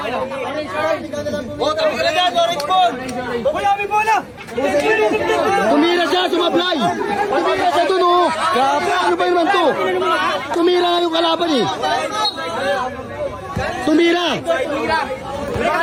Wala may bola. Tumira siya, sumablay. Tumira siya dun, oh. Ano ba naman to? Tumira nga yung kalaban, eh.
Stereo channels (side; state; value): both; identical; correlation 1.00